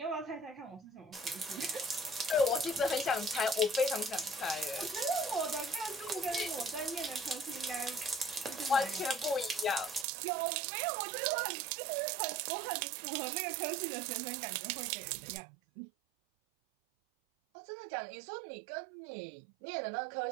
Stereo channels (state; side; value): drops out; left; at 10.1 s